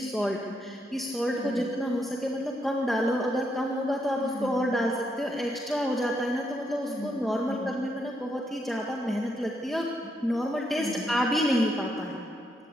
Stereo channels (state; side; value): normal; both; correlation 0.78